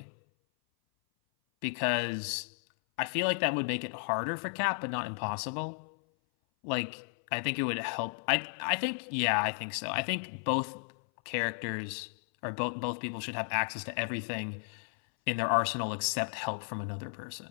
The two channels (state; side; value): silent; right; 55 dB below the other